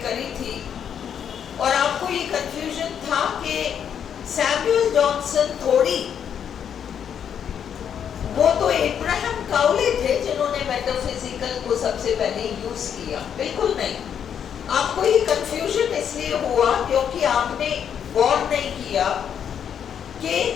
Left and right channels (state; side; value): quieter; right; 8.4 dB